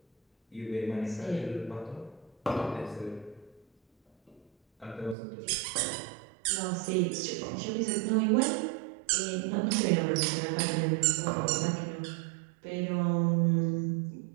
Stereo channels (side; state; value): left; drops out; at 5.2 s